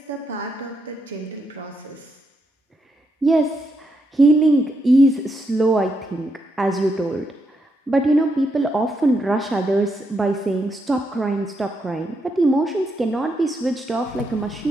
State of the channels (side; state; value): both; normal; correlation 0.80